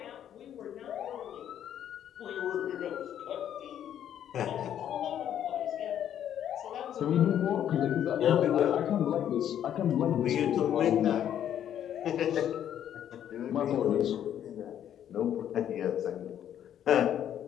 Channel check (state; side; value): quieter; right; 10.2 dB